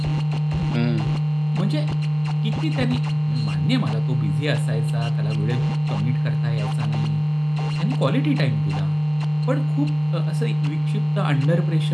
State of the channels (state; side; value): identical; both; correlation 1.00